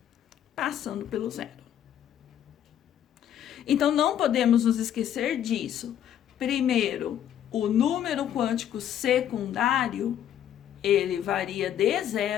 passando pelo zero. Então, não podemos nos esquecer disso. Primeiro, o número quântico secundário, ele varia de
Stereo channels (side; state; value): right; quieter; 10.3 dB